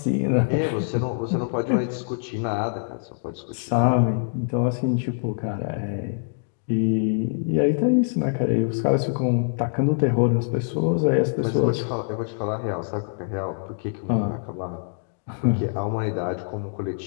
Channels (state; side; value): silent; right; digital silence